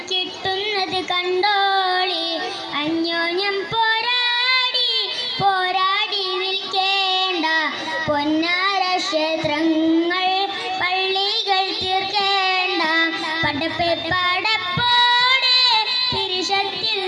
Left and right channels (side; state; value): both; identical; correlation 1.00